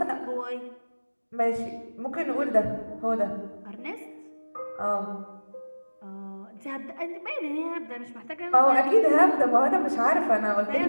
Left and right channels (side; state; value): both; inverted; correlation -1.00